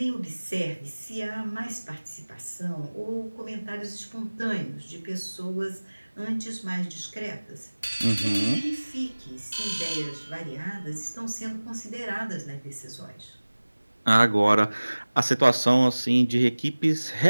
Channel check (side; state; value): both; inverted; correlation -1.00